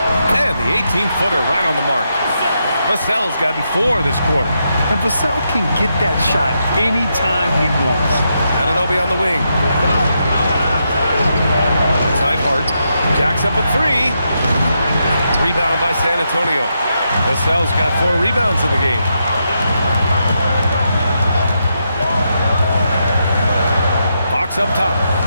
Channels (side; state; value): both; inverted; correlation -0.82